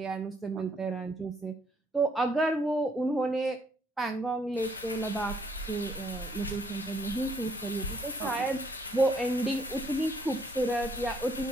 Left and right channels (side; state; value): both; normal; correlation 0.68